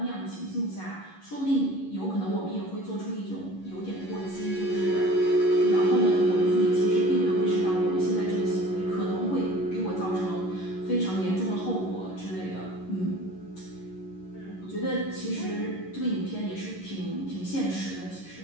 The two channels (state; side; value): late; right; 11 ms